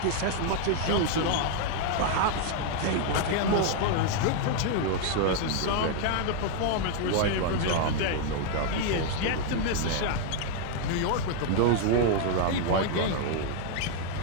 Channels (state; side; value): different; both; correlation 0.00